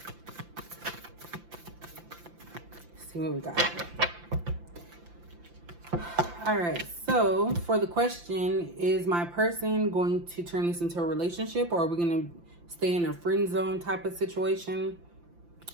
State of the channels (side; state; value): left; late; 5.8 ms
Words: See what we got. All right, so for the question, is my person going to turn this into a relationship, or are we going to stay in a friend zone type of situation?